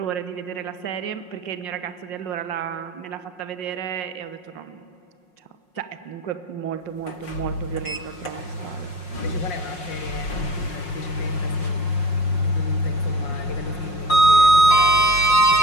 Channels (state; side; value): late; right; 5.6 ms